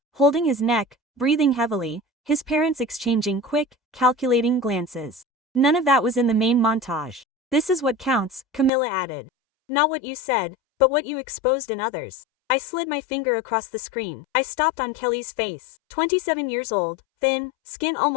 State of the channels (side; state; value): right; drops out; at 8.7 s